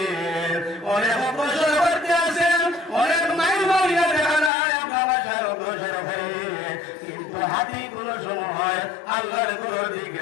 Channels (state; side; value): drops out; right; at 4.5 s